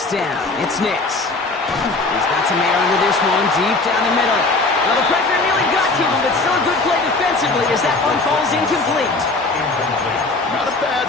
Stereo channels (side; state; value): right; quieter; 3.4 dB